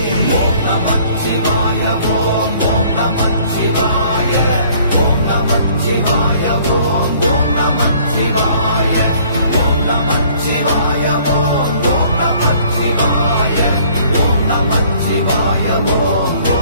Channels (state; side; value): inverted; both; correlation -0.57